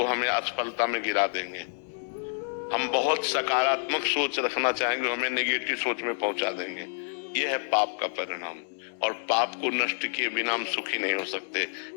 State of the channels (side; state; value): right; silent; digital silence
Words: हमें असफलता में गिरा देंगे। हम बहुत सकारात्मक सोच रखना चाहेंगे, हमें नेगेटिव सोच में पहुंचा देंगे। ये है पाप का परिणाम। और पाप को नष्ट किए बिना हम सुखी नहीं हो सकते।